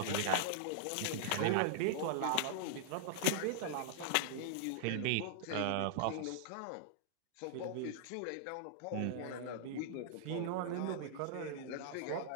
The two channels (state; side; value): different; both; correlation -0.02